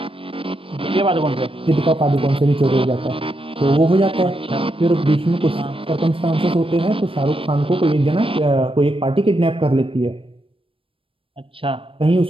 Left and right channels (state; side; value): late; left; 0.26 ms